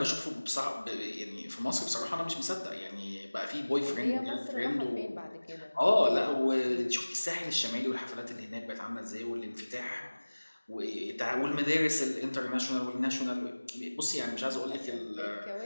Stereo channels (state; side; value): inverted; both; correlation -1.00